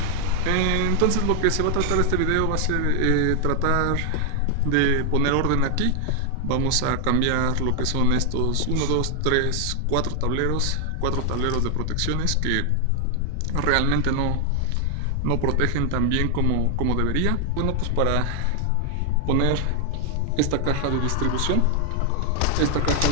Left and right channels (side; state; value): both; different; correlation 0.00